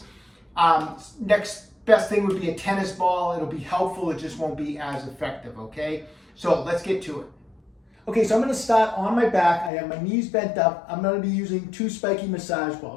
next best thing would be a tennis ball. It'll be helpful, it just won't be as effective, okay? So let's get to it. Okay, so I'm going to start on my back. I have my knees bent up. I'm going to be using two spiky massage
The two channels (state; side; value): drops out; right; at 9.7 s